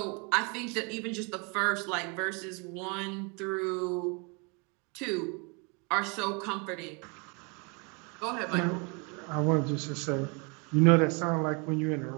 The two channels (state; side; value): quieter; left; 32.7 dB